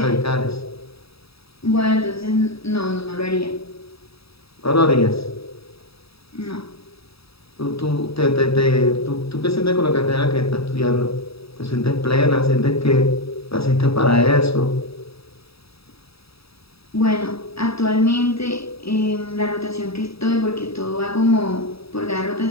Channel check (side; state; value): right; late; 0.77 ms